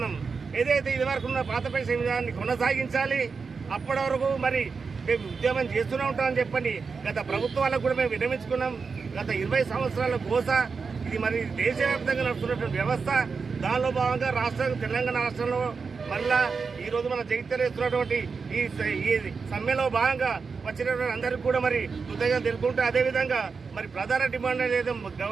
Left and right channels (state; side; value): quieter; left; 5.0 dB